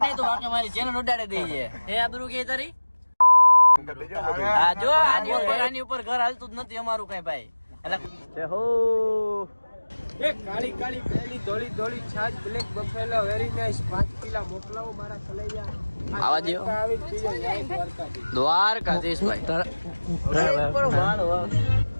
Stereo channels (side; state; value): both; inverted; correlation -1.00